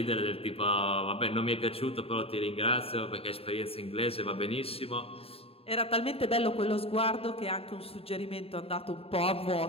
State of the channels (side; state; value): right; late; 0.28 ms